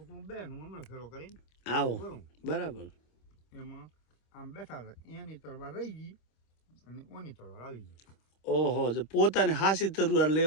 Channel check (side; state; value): right; late; 26 ms